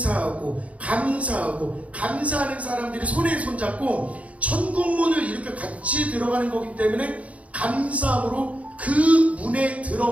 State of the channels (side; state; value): left; late; 0.066 ms